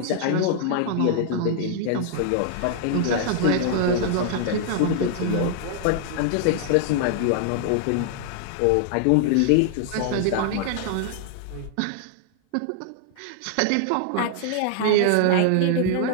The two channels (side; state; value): both; different; correlation -0.01